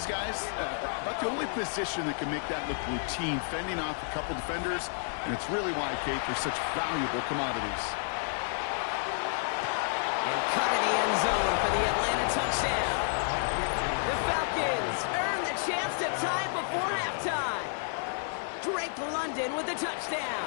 guys, about the only position that can make that look routine, fending off a couple defenders, and it's really why, Kate, they're such valuable commodities. And cut in the end zone for the Atlanta touchdown. The Falcons earn the chance to tie it before halftime. Drake London with the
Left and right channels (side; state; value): right; silent; digital silence